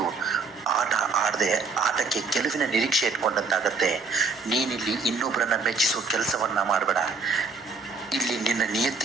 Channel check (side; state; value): left; quieter; 4.4 dB